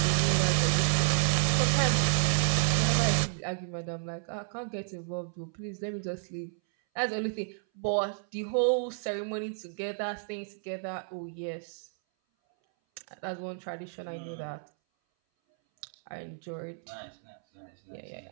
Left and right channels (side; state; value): left; silent; 57 dB below the other